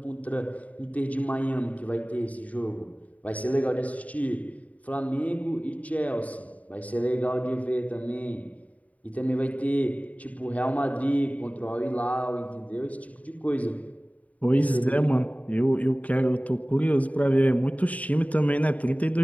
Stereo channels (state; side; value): late; right; 0.070 ms